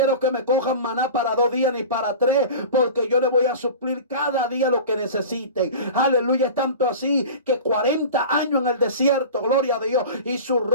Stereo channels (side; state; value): both; inverted; correlation -0.34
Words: que me cojan maná para 2 días ni para 3, porque yo le voy a suplir cada día lo que necesiten. Aleluya. Es tanto así que 40 años en el desierto, gloria a Dios, y su